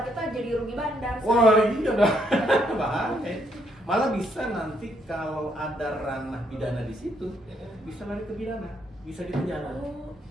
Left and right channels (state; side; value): normal; both; correlation 0.73